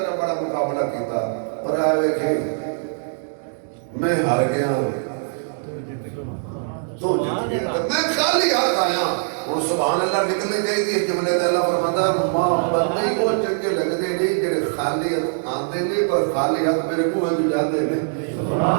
بڑا مقابلہ کیتا پر آئے کہ میں ہار گیا تو جت گیا میں خالی ہاتھ آیا اور سبحان اللہ نکلنے گئی تھی جملے تے اللہ فرماتا ماں بندے کو چنگے لگتے نہیں جڑے خالی ہاتھ آندے نہیں پر خالی ہاتھ میرے منہ وچ جاندے نے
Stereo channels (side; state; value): left; silent; digital silence